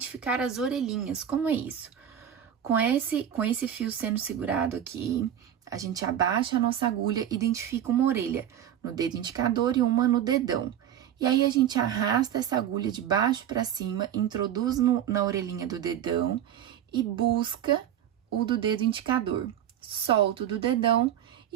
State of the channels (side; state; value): left; quieter; 10.2 dB